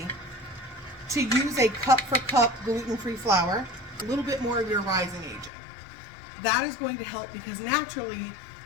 to use a cup for cup gluten-free flour, a little bit more of your rising agent. That is going to help because naturally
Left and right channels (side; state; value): right; drops out; at 5.5 s